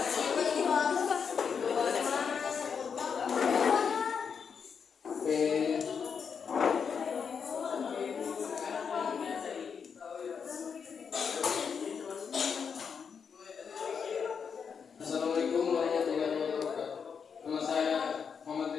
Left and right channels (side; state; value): right; quieter; 6.5 dB